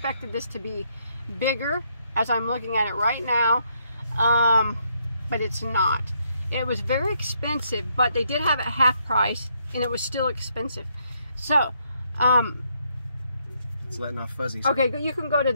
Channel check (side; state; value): both; inverted; correlation -0.73